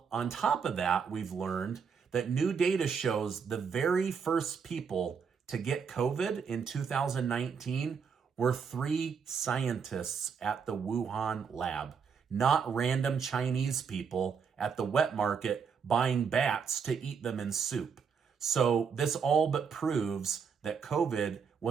on top of that, we've learned that new data shows the very first people to get COVID in 2019 were 3 scientists at the Wuhan lab, not random Chinese people at the wet market buying bats to eat them in soup. So this all but proves that COVID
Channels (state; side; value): quieter; left; 6.3 dB